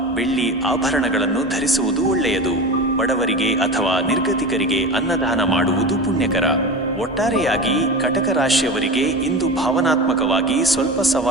ಬೆಳ್ಳಿ ಆಭರಣಗಳನ್ನು ಧರಿಸುವುದು ಒಳ್ಳೆಯದು. ಬಡವರಿಗೆ ಅಥವಾ ನಿರ್ಗತಿಕರಿಗೆ ಅನ್ನದಾನ ಮಾಡುವುದು ಪುಣ್ಯಕರ. ಒಟ್ಟಾರೆಯಾಗಿ ಕಟಕ ರಾಶಿಯವರಿಗೆ ಇಂದು ಭಾವನಾತ್ಮಕವಾಗಿ ಸ್ವಲ್ಪ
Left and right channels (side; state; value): both; normal; correlation 0.28